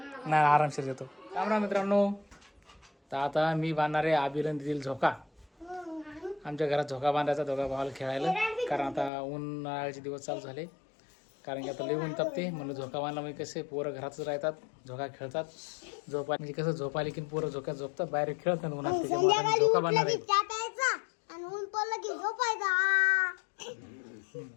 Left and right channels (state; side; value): drops out; right; at 9.1 s